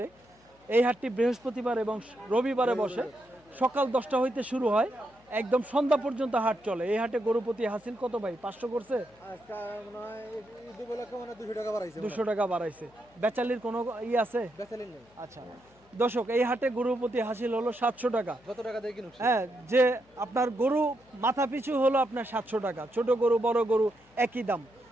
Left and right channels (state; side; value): noise; left; hum, 30 dB below the sound